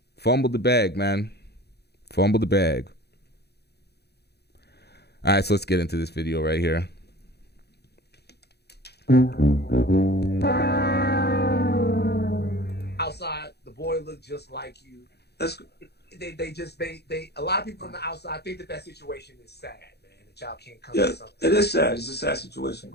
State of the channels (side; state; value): right; late; 0.48 ms